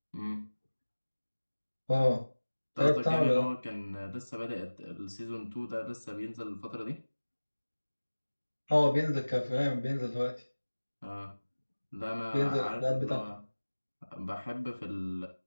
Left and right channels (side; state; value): both; inverted; correlation -1.00